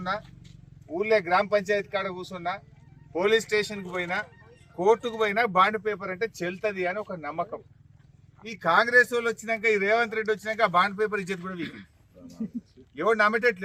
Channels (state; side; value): identical; both; correlation 1.00